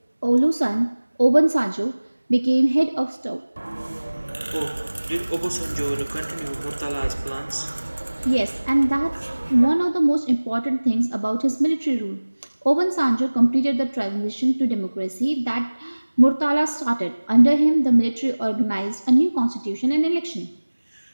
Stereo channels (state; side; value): inverted; both; correlation -1.00